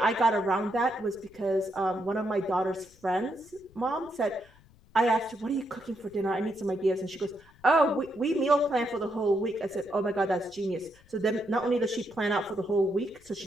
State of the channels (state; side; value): noise; left; rumble, 27 dB below the sound